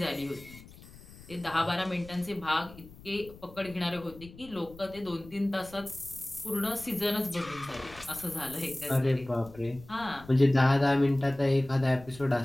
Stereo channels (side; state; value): left; noise; rumble, 19 dB below the sound